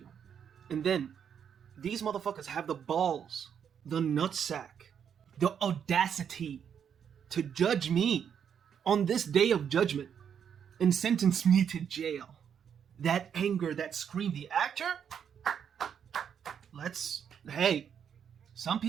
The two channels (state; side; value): quieter; left; 8.0 dB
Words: And then, these motherfuckers have the balls, the nutsack, the audacity to judge me on this day of judgment and sentence me to jail. That anger, that scream, the actor, hey, some